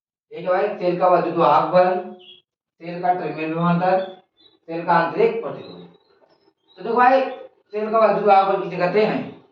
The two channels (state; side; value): identical; both; correlation 1.00